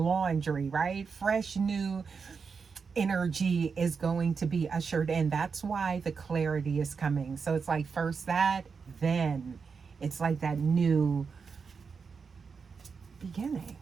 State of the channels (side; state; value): left; quieter; 5.5 dB